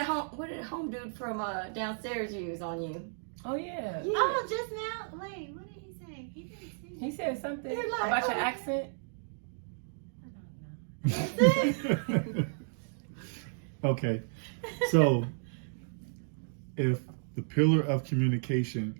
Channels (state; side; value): silent; left; digital silence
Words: did home dude from downstairs use on you? Oh yeah. Oh, just now. Wait, what did he say? He didn't say. He said something You're like, about oh, your yeah. accent. Okay, so if the pillar of communication,